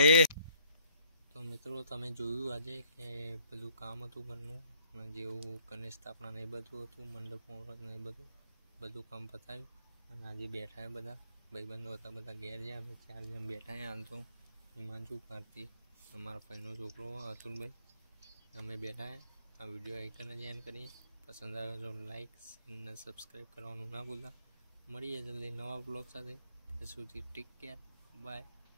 તો મિત્રો તમે જોયું આજે કે બધું કામ હતું ઘરનું અને જેવું ગણેશ સ્થાપના ને એ બધું હતું મંડપ મુહૂર્ત ને એ બધું કામ પતાવ્યું અને આજે બેઠા બધા ભાઈબંધો હતા બધા ઘેર જ્યાં અમે 4 જણ બેઠા હાલ તો હિમાંશુ કાર્તિક અમારા ભાઈનો છોકરો અતુલભાઈ અમે બેઠા આ વિડીયો આઈકન જ એન્ડ કરીએ પસંદ આવે તો લાઈક અને સબસ્ક્રાઈબ કરવાનું ના ભૂલતા. મળીએ જલ્દી નવા બ્લોગ સાથે. ત્યાં સુધી take care, bye,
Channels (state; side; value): inverted; both; correlation -0.63